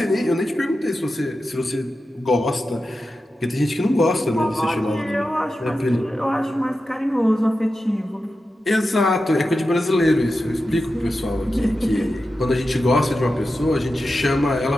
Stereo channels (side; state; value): both; normal; correlation 0.91